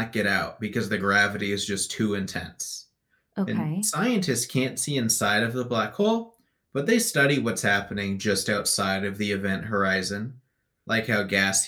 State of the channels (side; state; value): both; identical; correlation 1.00